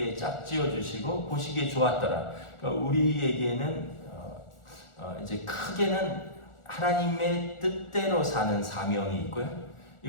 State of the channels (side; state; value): right; late; 1.4 ms